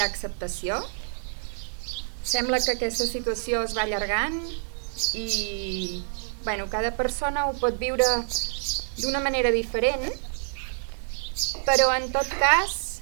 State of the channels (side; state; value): left; silent; digital silence